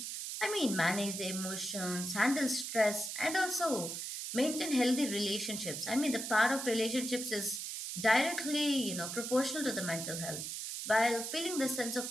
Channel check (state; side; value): noise; right; hiss, 5 dB below the sound